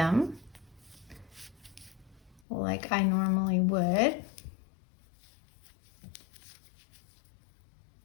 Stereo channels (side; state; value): right; drops out; at 2.4 s